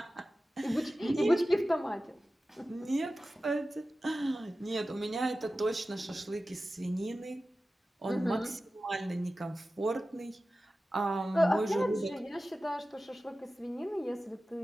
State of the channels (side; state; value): both; normal; correlation 0.95